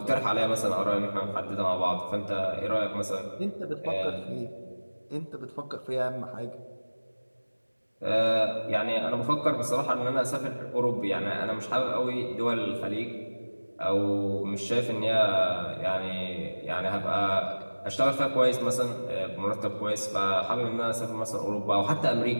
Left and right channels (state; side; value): inverted; both; correlation -1.00